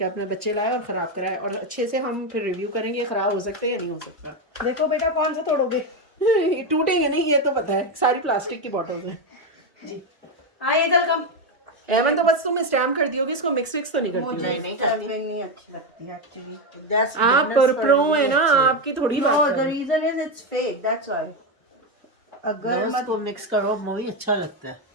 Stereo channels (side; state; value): both; normal; correlation 0.09